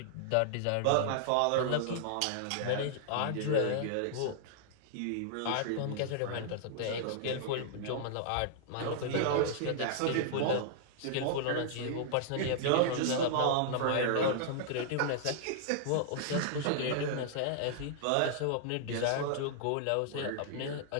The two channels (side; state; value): both; different; correlation -0.01